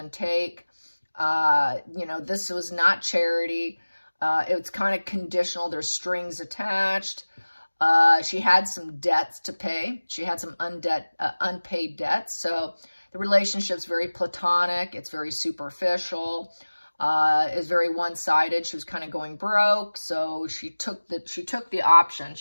take. You know, this was not charity. It was kind of conditional. There's strings attached. She had some debts to pay. She had some unpaid debts. So the relationship's very platonic. It's very superficial. is very one-sided. She was kind of going broke, so she took the option.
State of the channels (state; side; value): inverted; both; correlation -1.00